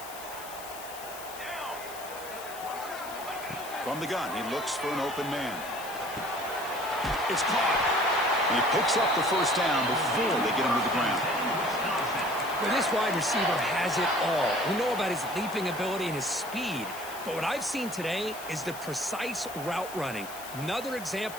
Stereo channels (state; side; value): noise; left; hiss, 14 dB below the sound